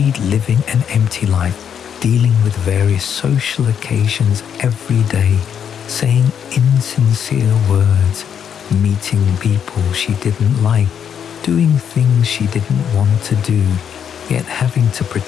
living an empty life, dealing with various social occasions every day, saying insincere words, meeting people she didn't like, doing things she didn't want to do, yet having to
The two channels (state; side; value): quieter; right; 8.2 dB